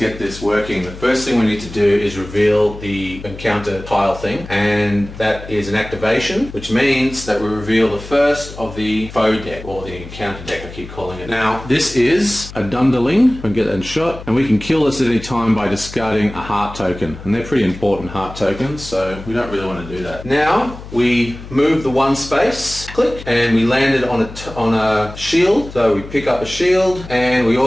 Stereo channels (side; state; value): left; noise; hum, 14 dB below the sound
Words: this working. The first thing we need to do is reveal the encounter tile thing, and that is an activation, which means that we reveal the first of the foe deck, or the encounter deck I keep calling it. Now, this is a Dunderling. We can get that in shot, and we can kill this at any time by discarding a heart token, and they're pretty important heart tokens, so we don't really want to do that. Now, we move the 1 space, click, and we landed on a shield, so we pick up a shield, and we